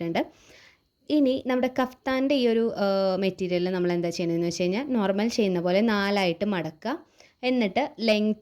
ഇനി നമ്മുടെ കഫ്താൻ്റെ ഈ ഒരു മെറ്റീരിയൽ നമ്മൾ എന്താ ചെയ്യുന്നതെന്ന് വെച്ച് കഴിഞ്ഞാൽ നോർമൽ ചെയ്യുന്ന പോലെ 4 ആയിട്ട് മടക്കുക. എന്നിട്ട്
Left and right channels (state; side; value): identical; both; correlation 1.00